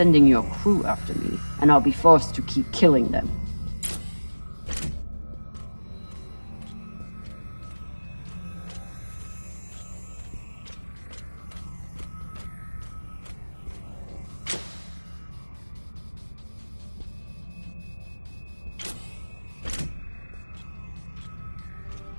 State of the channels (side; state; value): both; inverted; correlation -1.00